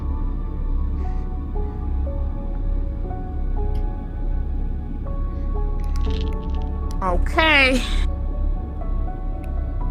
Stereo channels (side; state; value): both; identical; correlation 1.00